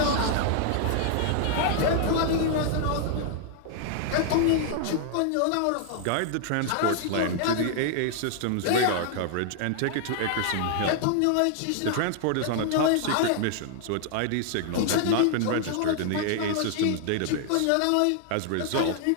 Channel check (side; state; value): both; different; correlation 0.00